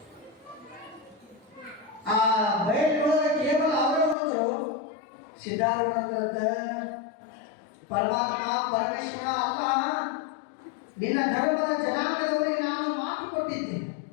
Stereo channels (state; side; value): drops out; right; at 4.2 s